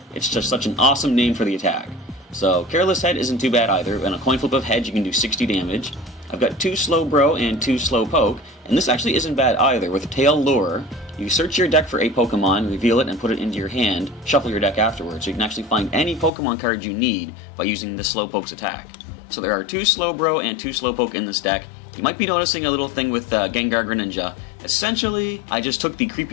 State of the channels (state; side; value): drops out; right; at 16.3 s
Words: It's just such an awesome name for the attack. So, Careless Head isn't too bad either. On a coin flip of heads, you can do 60 damage. I've got 2 Slowbro and 2 Slowpoke, and this actually isn't bad either. With Tail Lure, you search your deck for a Pokemon, reveal it, and put it into your hand, shuffle your deck afterwards, so you can actually find any Pokemon card you need by using the Slowpoke's attack. So there are 2 Slowbro and 2 Slowpoke in this deck. You might be noticing a little thing with Gengar Greninja. Essentially, I just took the